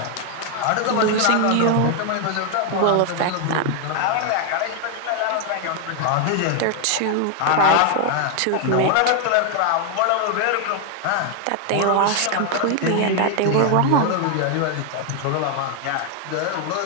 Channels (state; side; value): different; both; correlation 0.00